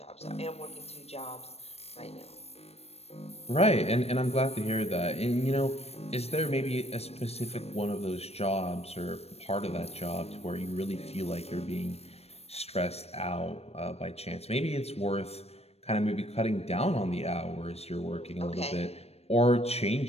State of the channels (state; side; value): late; right; 0.30 ms